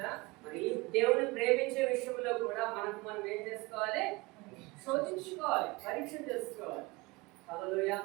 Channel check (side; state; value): left; quieter; 24.1 dB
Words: మరి దేవుని ప్రేమించే విషయంలో కూడా మనం ఏం చేసుకోవాలి? శోధించుకోవాలి, పరీక్ష చేసుకోవాలి. హల్లెలూయా.